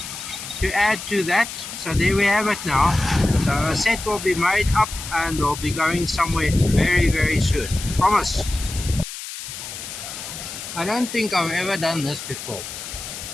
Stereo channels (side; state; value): left; noise; hiss, 9 dB below the sound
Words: to add to that. So there we have it now. So a set will be made up and we'll be going somewhere very, very soon. Promise. I don't think I've ever done this before.